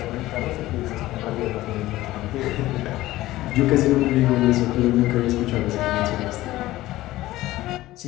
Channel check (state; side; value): quieter; right; 16.6 dB